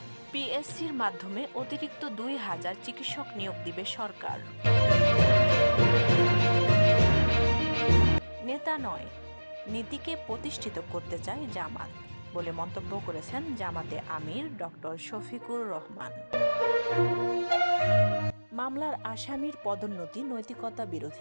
পিএসসির মাধ্যমে অতিরিক্ত 2000 চিকিৎসক নিয়োগ দিবে সরকার। নেতা নয়, নীতিকে প্রতিষ্ঠিত করতে চায় জামাত বলে মন্তব্য করেছেন জামাতে আমির ডক্টর শফিকুর রহমান। মামলার আসামির পদোন্নতি নৈতিকতা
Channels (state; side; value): inverted; both; correlation -1.00